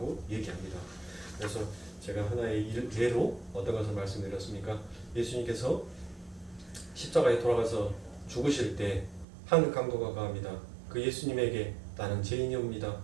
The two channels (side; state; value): left; drops out; at 9.2 s